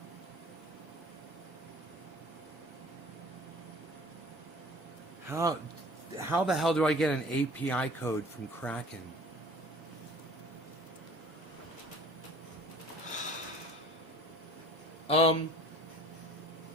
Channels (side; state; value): both; normal; correlation 0.47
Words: How the hell do I get an API code from Kraken?